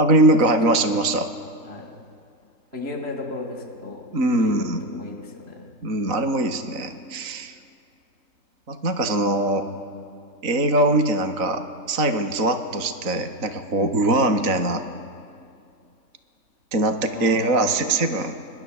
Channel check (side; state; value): left; late; 3.9 ms